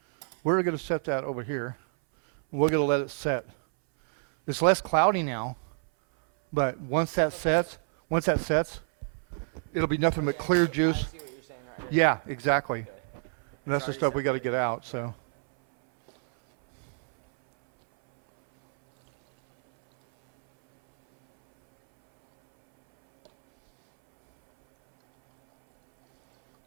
we're going to set that over here. We're going to let it set. It's less cloudy now, but once that sets, it'll be nothing but clear juice. I see what you're saying right here. Yeah, exactly. Okay. And that's the It's stuff we got to already get out. separated. So,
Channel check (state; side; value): silent; left; 60 dB below the other